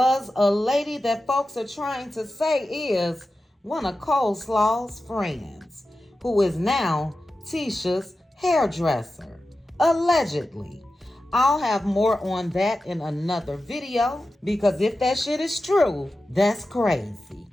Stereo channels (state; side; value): normal; both; correlation 0.93